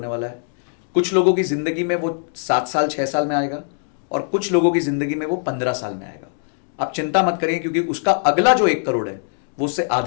वाला है। कुछ लोगों की जिंदगी में वो 7 साल 6 साल में आएगा, और कुछ लोगों की जिंदगी में वो 15 साल में आएगा। आप चिंता मत करिए, क्योंकि उसका अगला जो 1 करोड़ है वो उससे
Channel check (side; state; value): right; silent; digital silence